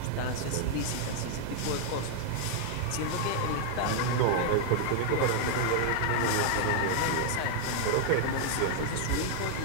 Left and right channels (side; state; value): both; different; correlation 0.00